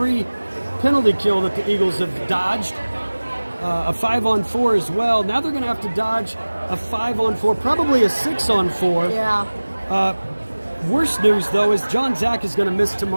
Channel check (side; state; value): both; inverted; correlation -1.00